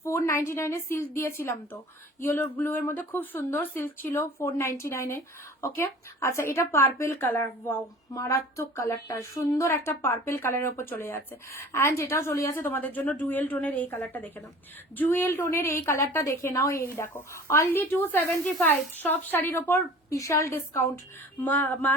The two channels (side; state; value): both; normal; correlation 0.44